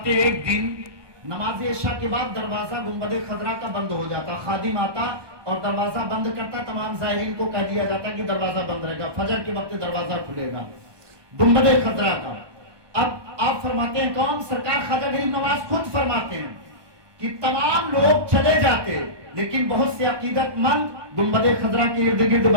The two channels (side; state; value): left; late; 1.2 ms